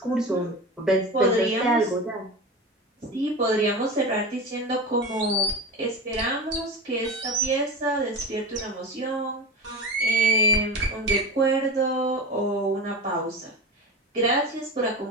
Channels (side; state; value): both; normal; correlation 0.27